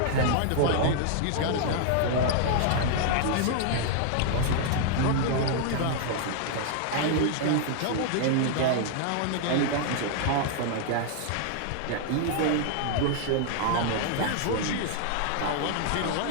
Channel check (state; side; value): different; both; correlation 0.00